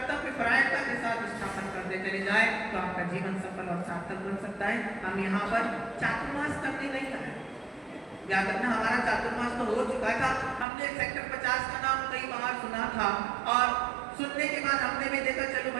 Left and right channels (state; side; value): drops out; left; at 10.7 s